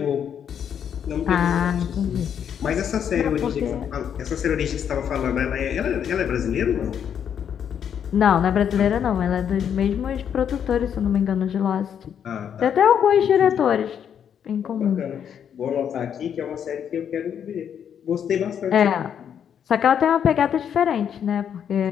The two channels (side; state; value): right; quieter; 8.5 dB